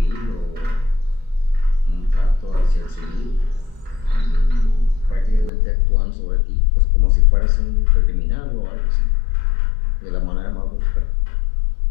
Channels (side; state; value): right; drops out; at 5.5 s